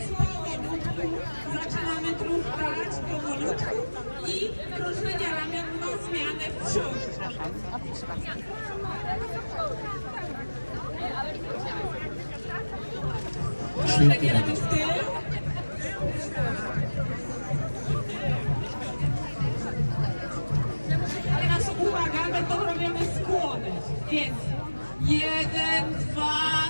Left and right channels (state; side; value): inverted; both; correlation -1.00